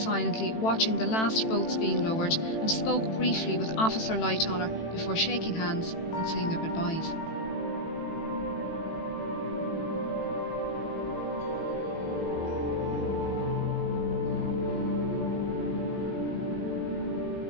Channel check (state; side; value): late; right; 18 ms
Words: watching the last boats being lowered and spoke briefly with Officer Lightoller before shaking hands and saying their goodbyes.